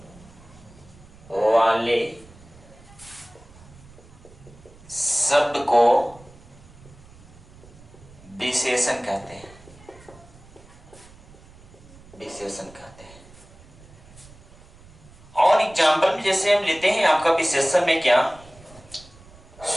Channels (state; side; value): noise; right; rumble, 23 dB below the sound